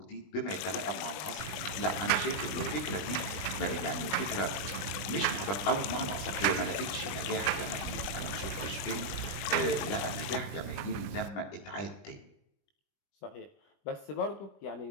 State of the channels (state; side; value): late; right; 21 ms